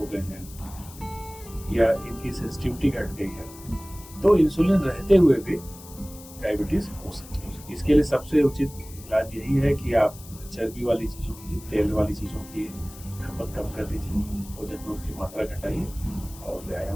गए हैं या इनकी सेंसिटिविटी घट गई है, तो इंसुलिन रहते हुए भी डायबिटीज हो सकती है। इसके लिए सबसे उचित इलाज यही है कि आप चर्बी वाली चीजों की, तेल वाली चीजों की खपत कम कर दीजिए, भोजन में उसकी मात्रा घटाइए और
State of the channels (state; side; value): noise; left; hiss, 18 dB below the sound